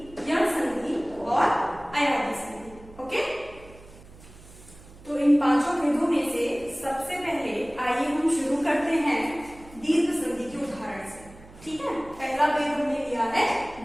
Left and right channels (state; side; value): noise; right; hum, 21 dB below the sound